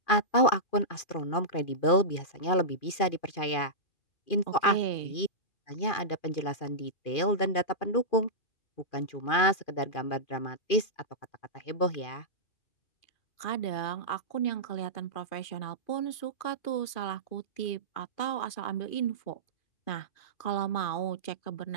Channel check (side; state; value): right; late; 2.4 ms